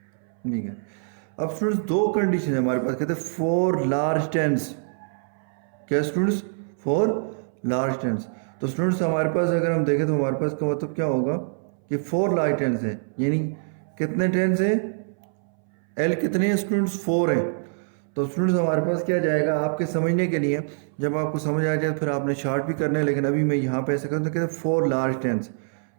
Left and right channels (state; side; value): silent; left; 61 dB below the other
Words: ठीक है। अब स्टूडेंट्स दो कंडीशन है हमारे पास, कहते हैं 4 लार्ज टेंस, क्या स्टूडेंट्स 4 लार्ज टेंस। तो स्टूडेंट्स हमारे पास अगर हम देखें तो हमारे पास का मतलब क्या होगा कि 4 लार्ज टेंस है, यानी कितने टेंस है, एल कितने हैं स्टूडेंट्स 4 है। तो स्टूडेंट्स हमारे पास क्या जाएगा, आपके समझने के लिए, जब आपको समझ आ जाए फिर आपने शार्ट भी करना है, लेकिन अभी मैं यहाँ पे ऐसे करता हूँ, कहते हैं 4 लार्ज टेंस,